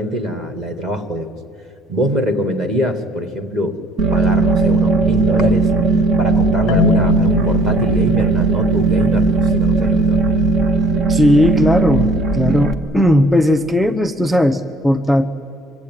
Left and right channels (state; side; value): normal; both; correlation 0.57